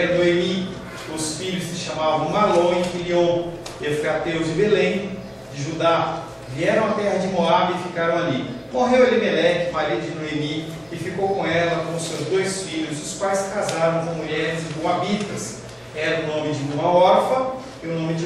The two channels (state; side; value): identical; both; correlation 1.00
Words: Noemi. Os filhos se chamavam Malom e Quilion, efrateus de Belém de Judá. Vieram à terra de Moabe e ficaram ali. Morreu Elimeleque, marido de Noemi, e ficou com ela, com seus 2 filhos, os quais casaram com mulheres moabitas. Era o nome de uma órfã e o nome de